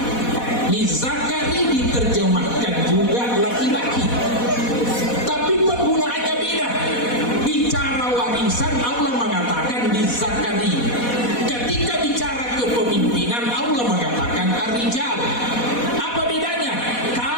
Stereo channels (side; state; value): right; late; 4.1 ms